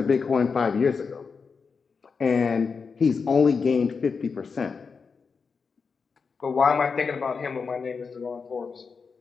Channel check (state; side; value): quieter; right; 5.3 dB